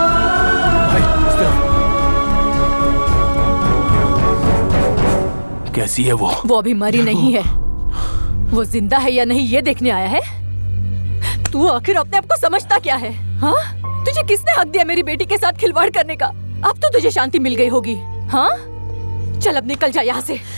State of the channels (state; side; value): inverted; both; correlation -1.00